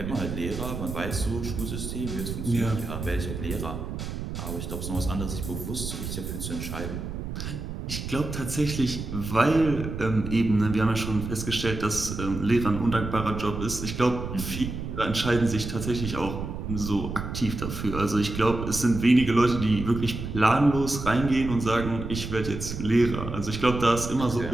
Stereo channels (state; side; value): noise; right; rumble, 6 dB below the sound